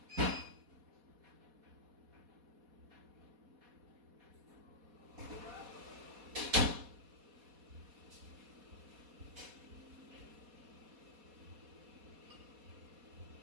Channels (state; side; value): late; left; 4.2 ms